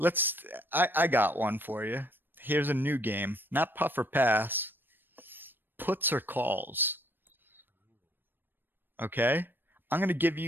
I got one for you. Here's a new game. Not puff or pass. Puts or calls. Okay, I'm gonna give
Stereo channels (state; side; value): late; left; 0.095 ms